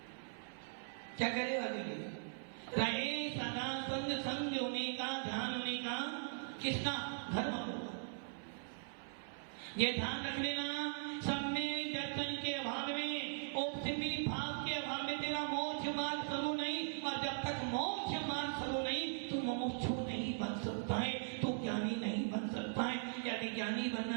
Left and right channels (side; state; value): left; silent; 51 dB below the other